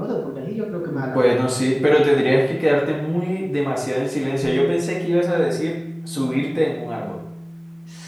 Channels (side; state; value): both; identical; correlation 1.00